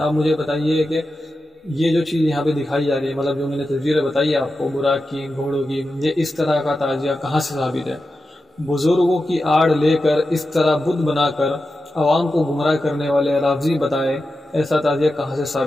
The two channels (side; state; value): both; normal; correlation 0.91